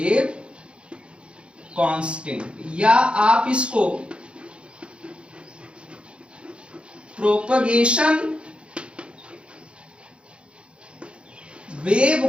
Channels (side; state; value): left; late; 0.057 ms